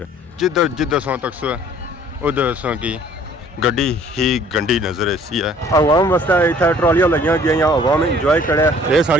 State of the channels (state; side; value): normal; both; correlation 0.55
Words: जिधर जिधर सा तक सो उधर सा की गड्डी ही गंडी नजर ऐसी है। अवाम वास्ते इतना ट्रॉलियां लगियां गई अवाम इंजॉय करे ये